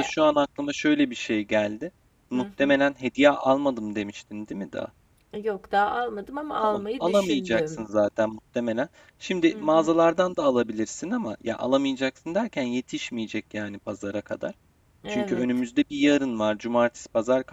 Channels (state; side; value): identical; both; correlation 1.00